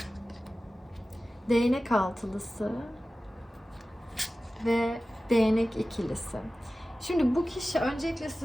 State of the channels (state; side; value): normal; both; correlation 0.96